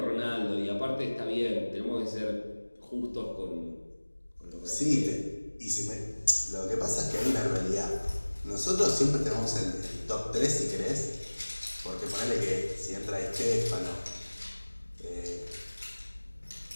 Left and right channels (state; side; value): inverted; both; correlation -1.00